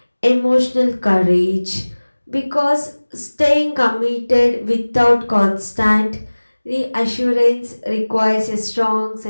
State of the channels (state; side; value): inverted; both; correlation -1.00